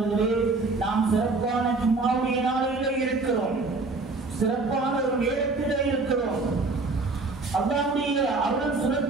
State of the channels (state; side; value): quieter; left; 3.6 dB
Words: நாம் சிறப்பான ஜும்ஆவுடைய நாளிலே இருக்கிறோம், சிறப்பான ஒரு நேரத்திலே இருக்கிறோம், அல்லாஹ்வுடைய அருள்